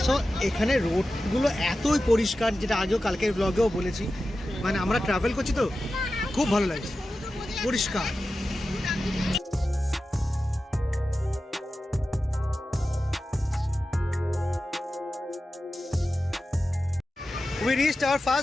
এখানে রোডগুলো এতই পরিষ্কার, যেটা আগেও কালকের ব্লগেও বলেছি। মানে আমরা ট্রাভেল করছি তো খুব ভালো লাগছে, পরিষ্কার। We reached hour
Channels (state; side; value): normal; both; correlation 0.93